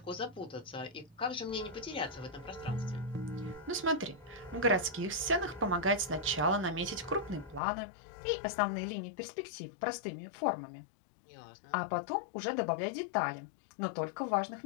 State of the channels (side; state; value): right; drops out; at 7.6 s